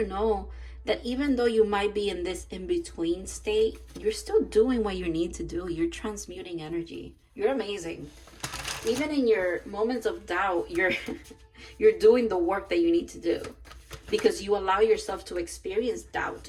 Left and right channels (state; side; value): identical; both; correlation 1.00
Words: know that even though you might be in this in-between state, you're still doing what you need to do. You're transmuting energy. You're amazing. Even in your moments of doubt, you're doing the work that you need to do. Because you allow yourself to experience